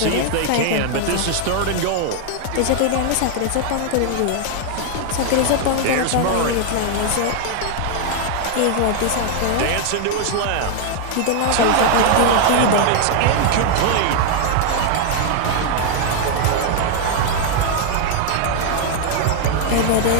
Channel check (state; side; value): different; both; correlation 0.00